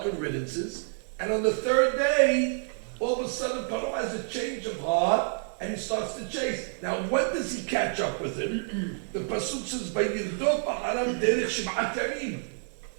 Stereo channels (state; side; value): silent; left; 56 dB below the other